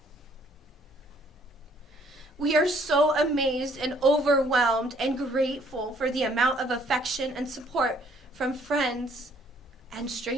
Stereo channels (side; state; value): both; normal; correlation 0.63